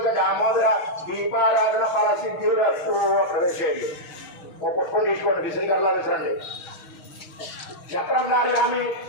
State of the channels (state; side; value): late; right; 6.4 ms